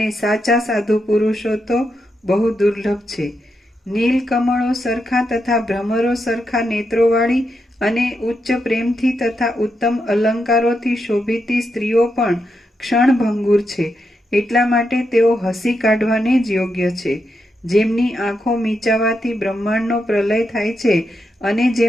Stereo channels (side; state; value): both; normal; correlation 0.84